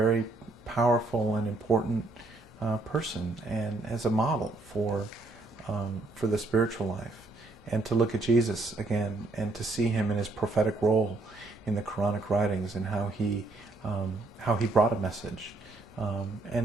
powerful and important person, and as a model for the spiritual life. And to look at Jesus again, and to see him in his prophetic role in the Quranic writings, and how he brought a message,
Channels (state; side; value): quieter; left; 3.1 dB